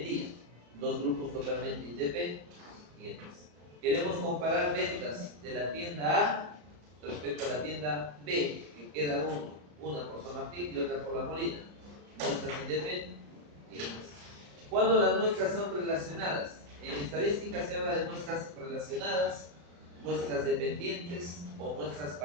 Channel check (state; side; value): late; left; 34 ms